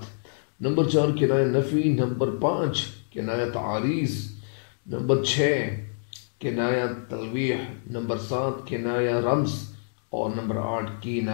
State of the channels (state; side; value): silent; right; digital silence